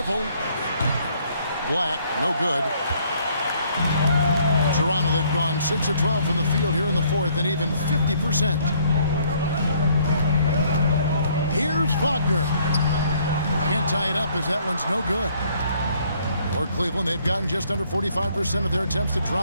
Black, no good. Toronto, they've gone 6 of 12 from the field here in the fourth and even 50%. Here's Wagner. Can't tie it up as that one's no good. For Cleveland, they've gotten just under 45% of their attempts to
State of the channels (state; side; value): inverted; both; correlation -0.64